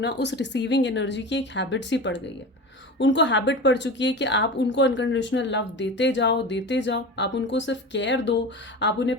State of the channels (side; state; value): both; normal; correlation 0.30